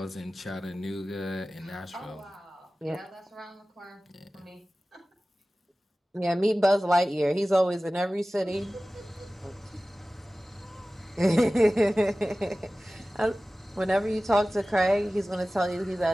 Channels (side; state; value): both; normal; correlation 0.97